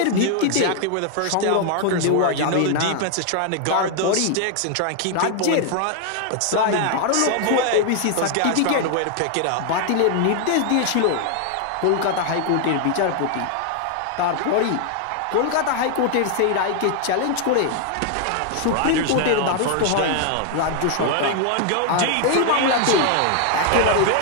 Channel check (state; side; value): different; both; correlation 0.00